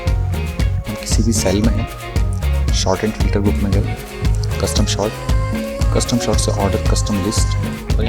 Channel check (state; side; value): identical; both; correlation 1.00